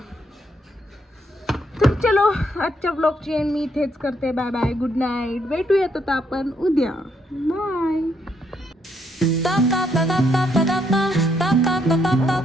तर चलो आजच्या ब्लॉगची एंड मी इथेच करते. Bye bye, good night. भेटूयात आता आपण उद्या. बाय.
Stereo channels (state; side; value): normal; both; correlation 0.73